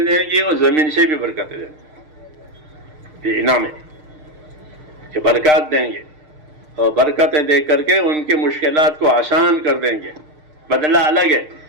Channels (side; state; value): left; late; 6.6 ms